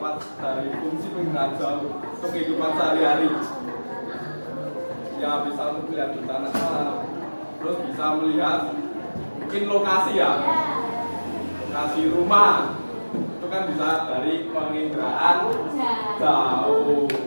dari fungsi penginderaan jauh untuk kehidupan sehari-hari? Ya bisa untuk melihat bencana alam, terus bisa melihat mungkin lokasi ya, lokasi rumah itu kan bisa dari penginderaan jauh.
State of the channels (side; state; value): both; inverted; correlation -1.00